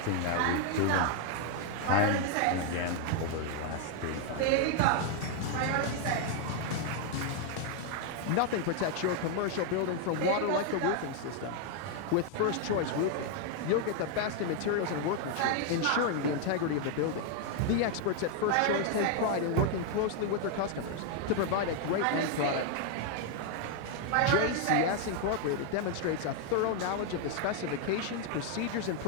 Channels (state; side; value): different; both; correlation 0.00